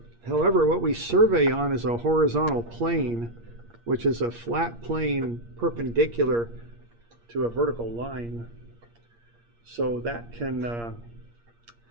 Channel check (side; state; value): left; late; 8.6 ms